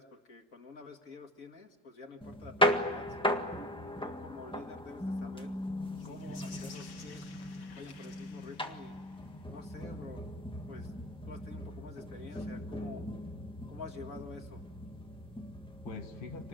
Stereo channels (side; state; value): both; normal; correlation 0.35